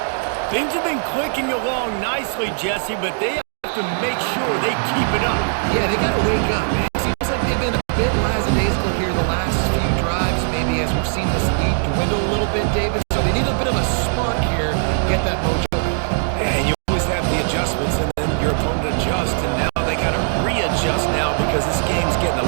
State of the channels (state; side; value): silent; left; digital silence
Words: Things have been clicking along nicely, Jesse, but they have to make sure they keep it up. Yeah, they got to wake up, man. It seems like they've been a bit lackadaisical here the last few drives, maybe as we've seen this lead dwindle a little bit, David. So they need a bit of a spark here, get that mojo back. Yeah, and you always have the adjustments, and then your opponent adjusts, and now they got to readjust now because this game's getting